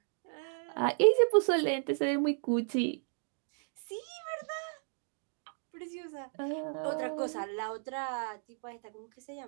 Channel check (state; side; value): silent; left; digital silence